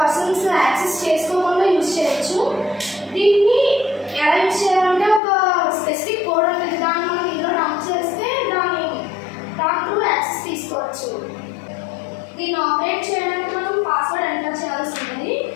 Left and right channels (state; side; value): drops out; right; at 5.2 s